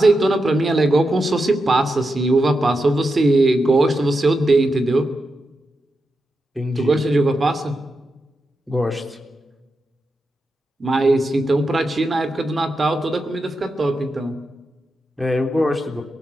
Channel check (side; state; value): both; normal; correlation 0.88